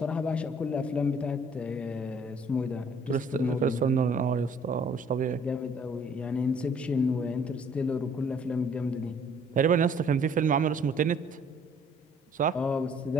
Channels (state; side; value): normal; both; correlation 0.58